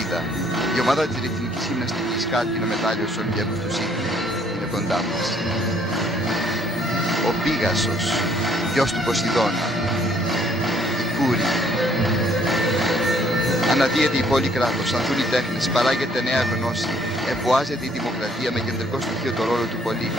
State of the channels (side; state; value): both; normal; correlation 0.63